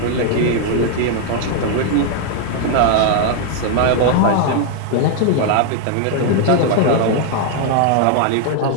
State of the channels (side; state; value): both; different; correlation 0.00